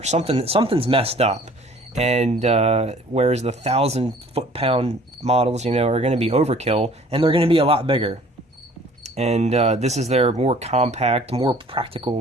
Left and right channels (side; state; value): both; normal; correlation 0.52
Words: something's messed up. And whereas the 1,000 foot-pound models, you know, are going to be overkill, and they're going to be a lot bigger. And this is their more compact, more